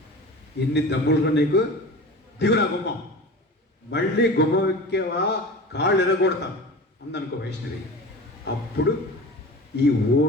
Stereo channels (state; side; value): normal; both; correlation 0.34